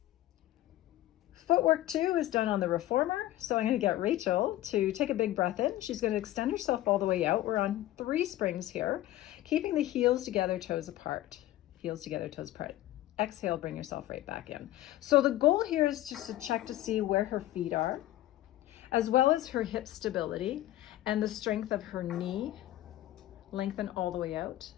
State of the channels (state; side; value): quieter; right; 14.9 dB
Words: Footwork 2 is done on the reformer. So I'm gonna get Rachel to take a big breath in. She's gonna extend herself all the way out. We're on 3 springs here, keeping the heels together, toes apart. Heels together, toes apart. Exhale, bring yourself right back in. So the goal here is just to check to see where her feet are, as well as her hip stability and the strength of her knee. Lengthen all the way out.